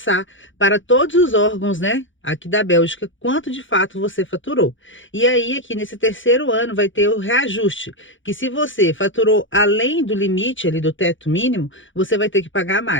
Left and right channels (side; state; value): right; late; 0.56 ms